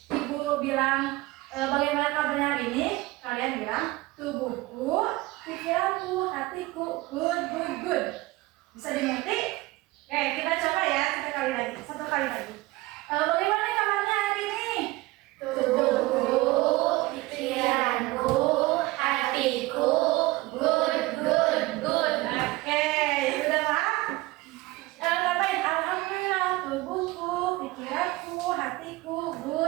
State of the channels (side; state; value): left; quieter; 20.2 dB